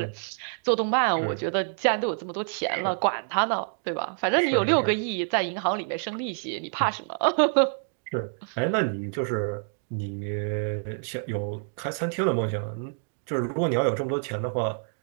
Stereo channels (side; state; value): left; silent; digital silence